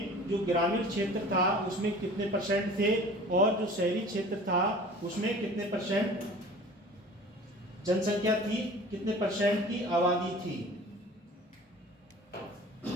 जो ग्रामीण क्षेत्र था उसमें कितने परसेंट थे और जो शहरी क्षेत्र था उसमें कितने परसेंट जनसंख्या थी, कितने परसेंट की आबादी थी।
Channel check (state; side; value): normal; both; correlation 0.44